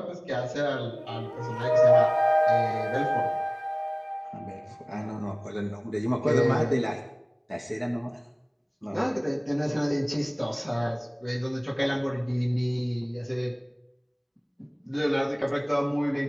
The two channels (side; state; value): both; identical; correlation 1.00